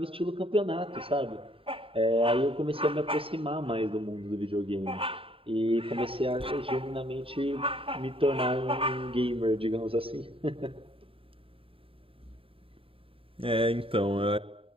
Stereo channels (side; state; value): left; late; 0.27 ms